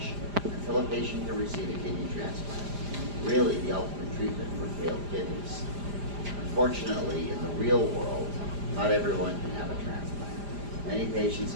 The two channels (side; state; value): left; late; 5.0 ms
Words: until a patient can receive a kidney transplant, really the ultimate treatment for failed kidneys. Unfortunately, in the real world, not everyone can have a transplant. Many patients